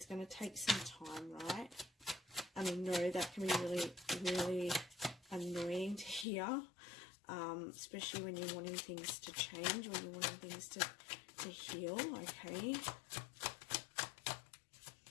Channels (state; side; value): drops out; right; at 6.2 s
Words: going to take some time, right? I mean, no, that can be really, really annoying to hear. Especially when you're wanting things to change, when you're wanting things to heal, okay?